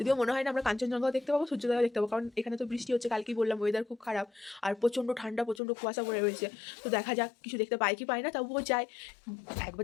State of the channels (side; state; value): right; drops out; at 5.6 s